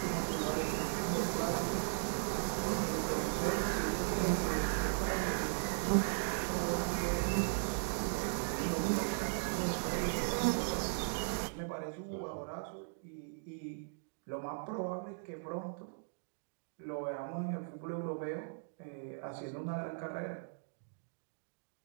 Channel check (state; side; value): silent; left; digital silence